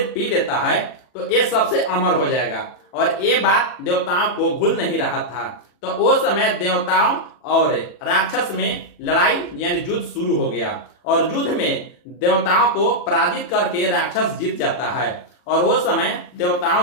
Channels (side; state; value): right; late; 40 ms